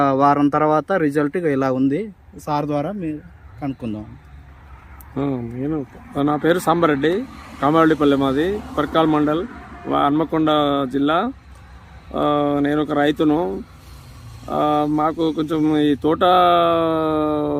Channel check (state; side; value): identical; both; correlation 1.00